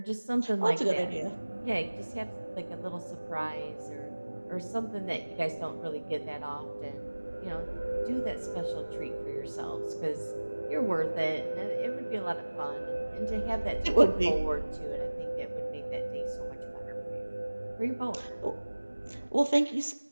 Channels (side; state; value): both; inverted; correlation -1.00